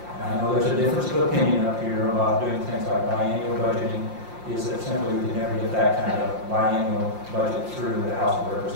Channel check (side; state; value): left; late; 5.7 ms